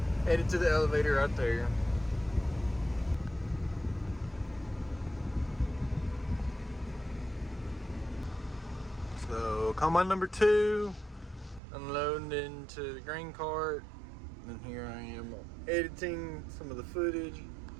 headed to the elevator right there. So combine number 2, unloading into the grain cart. And here I am editing some of the footage.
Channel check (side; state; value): left; drops out; at 11.6 s